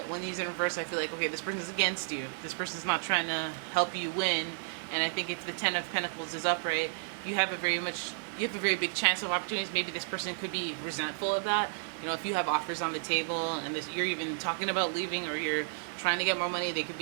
when he's in reverse, I feel like, okay, this person's against you. This person's not trying to help you win. And I think if the Ten of Pentacles is upright, you have a very big chance of opportunities. Maybe this person could be resentful of that. You know, if you have offers on the table and you're even talking about leaving, or you're trying to get more money, they could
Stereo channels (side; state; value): left; silent; digital silence